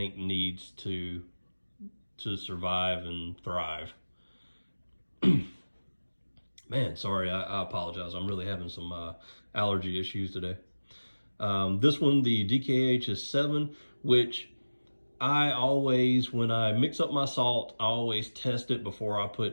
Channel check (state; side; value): inverted; both; correlation -1.00